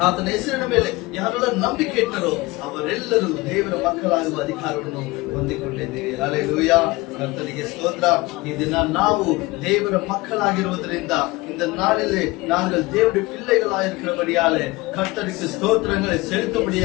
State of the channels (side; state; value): right; quieter; 21.6 dB